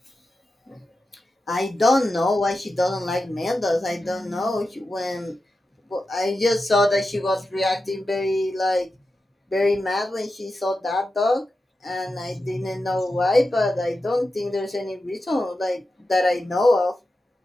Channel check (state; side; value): normal; both; correlation 0.91